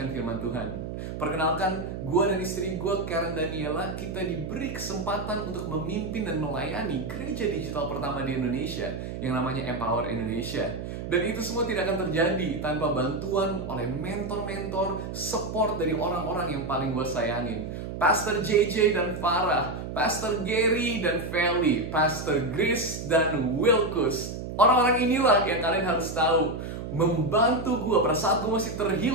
firman Tuhan. Perkenalkan, gue dan istri gue, Karen Daniela, kita diberi kesempatan untuk memimpin dan melayani gereja digital pertama di Indonesia yang namanya Empower Indonesia. Dan itu semua tidak akan terjadi tanpa bantuan oleh mentor-mentor, support dari orang-orang yang paling gue sayangin. Pastor JJ dan Farah, Pastor Gary dan Feli, Pastor Grace dan Wilkus. Orang-orang inilah yang kalian harus tahu membantu gue. Pada saat gue masih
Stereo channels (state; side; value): noise; right; hum, 7 dB below the sound